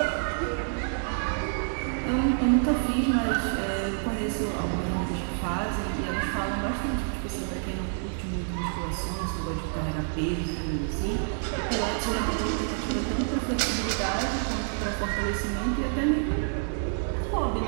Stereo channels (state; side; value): silent; left; 59 dB below the other